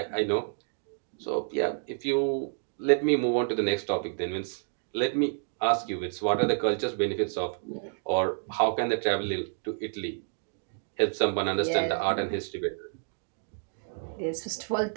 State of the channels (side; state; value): left; silent; digital silence